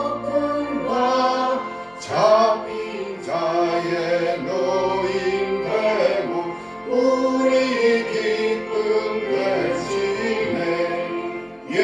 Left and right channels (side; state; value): both; identical; correlation 1.00